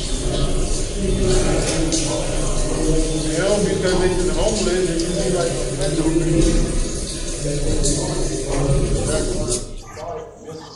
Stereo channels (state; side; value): identical; both; correlation 1.00